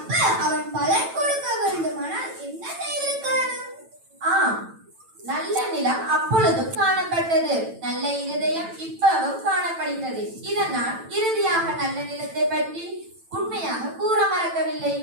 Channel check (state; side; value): late; left; 9.0 ms